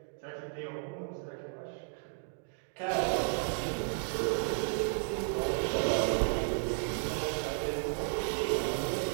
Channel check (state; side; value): silent; left; 55 dB below the other